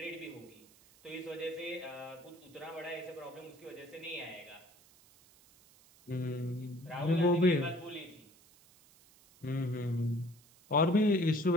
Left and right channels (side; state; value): right; noise; hiss, 27 dB below the sound